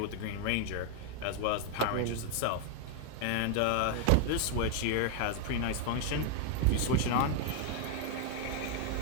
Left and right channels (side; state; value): both; different; correlation 0.00